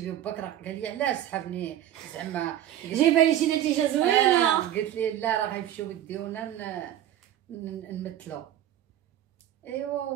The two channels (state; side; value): quieter; left; 11.8 dB